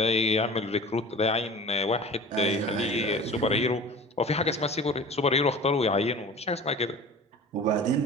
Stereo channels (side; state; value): both; normal; correlation 0.39